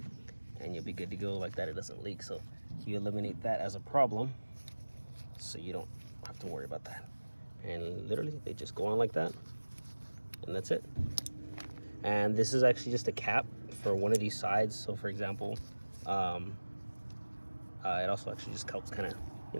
and you'll be good to go like that. It doesn't leak. So you eliminate that as a problem, so you don't have to worry about that. And literally they just go on like that, and that's it. And this is actually just a cap for one of these sides. So for example, it also actually just helps kind of, you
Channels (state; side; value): inverted; both; correlation -1.00